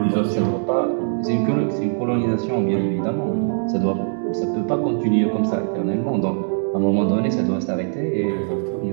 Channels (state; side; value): silent; left; digital silence